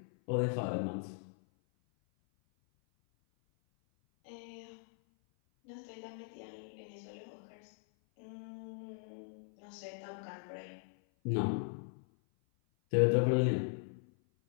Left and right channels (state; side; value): silent; right; 52 dB below the other